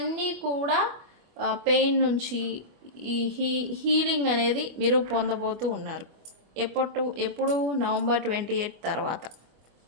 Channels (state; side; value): late; left; 24 ms